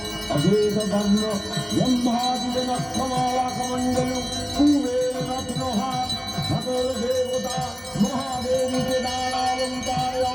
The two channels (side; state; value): both; identical; correlation 1.00